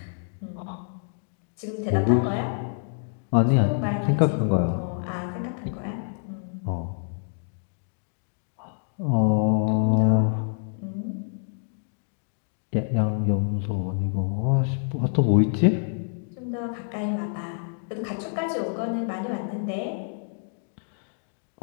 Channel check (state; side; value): silent; right; digital silence